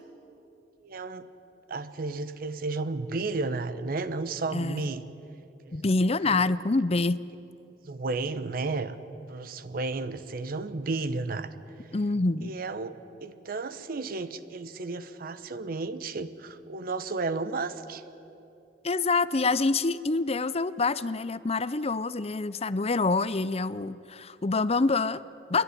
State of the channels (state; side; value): normal; both; correlation 0.33